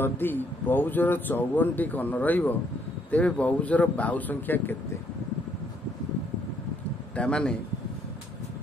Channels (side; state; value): both; normal; correlation 0.69